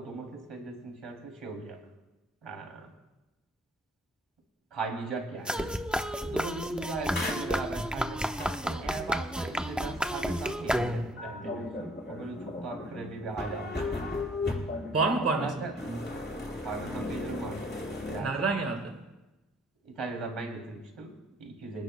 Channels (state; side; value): normal; both; correlation 0.61